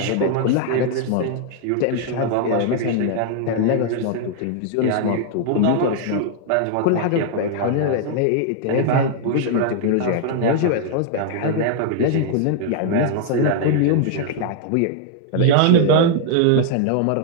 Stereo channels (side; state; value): both; different; correlation 0.00